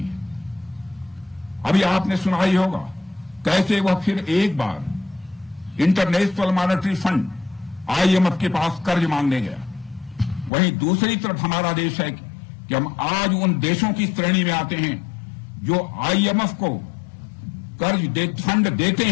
अभी आपने सुना ही होगा कैसे वह फिर एक बार इंटरनेशनल मॉनेटरी फंड IMF के पास कर्ज मांगने गया। वहीं दूसरी तरफ हमारा देश है कि हम आज उन देशों की श्रेणी में आते हैं जो IMF को फंड देते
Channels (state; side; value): drops out; right; at 10.5 s